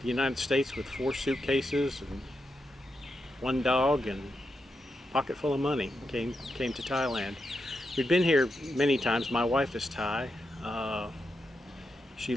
United States with 4 suitcases and 1 dog and a pocket full of money. Came to Thailand. We'd been here many times. My wife is Thai. She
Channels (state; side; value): normal; both; correlation 0.86